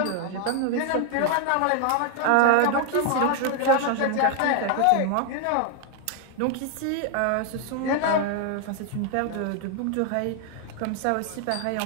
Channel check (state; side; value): different; both; correlation 0.00